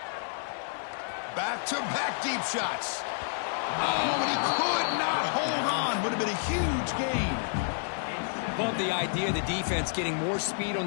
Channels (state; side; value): silent; right; digital silence